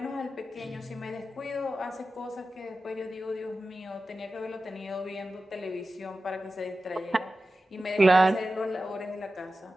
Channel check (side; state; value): both; normal; correlation 0.93